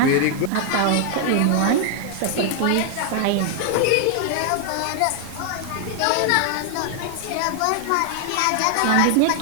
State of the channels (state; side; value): different; both; correlation 0.00